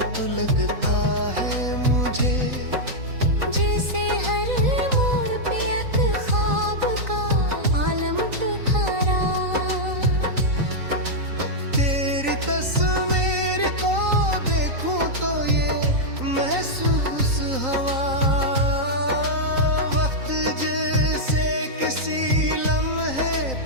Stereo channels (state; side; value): late; left; 3.9 ms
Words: तो लगता है मुझे, जैसे हर मोड़ पे एक ख्वाब का आलम ठहरा। तेरी तस्वीर को देखूं तो ये महसूस हवा, वक्त जैसे किसी लम्हे